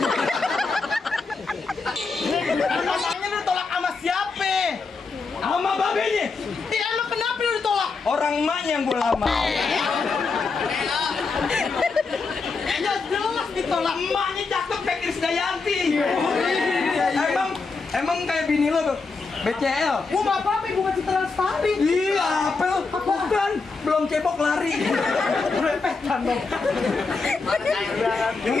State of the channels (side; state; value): right; quieter; 4.3 dB